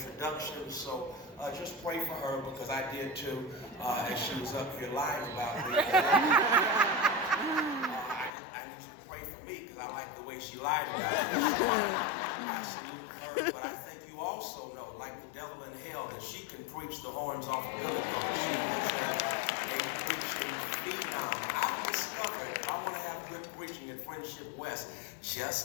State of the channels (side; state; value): right; drops out; at 8.3 s